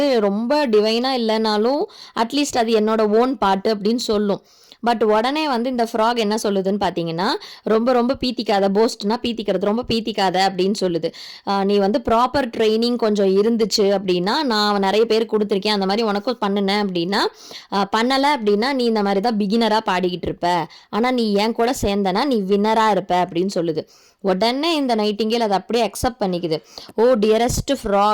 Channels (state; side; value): identical; both; correlation 1.00